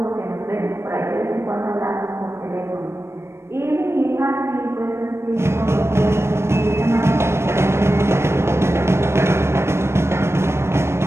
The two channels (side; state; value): left; late; 0.13 ms